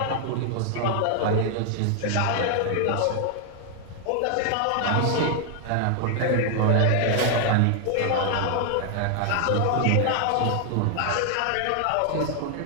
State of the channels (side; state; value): both; different; correlation 0.00